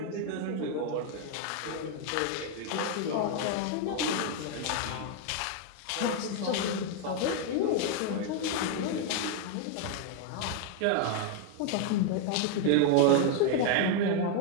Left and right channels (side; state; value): both; different; correlation 0.00